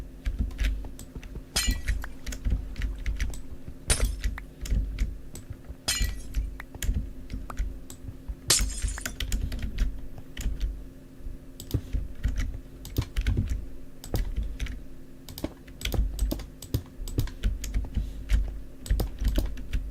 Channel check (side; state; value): both; identical; correlation 1.00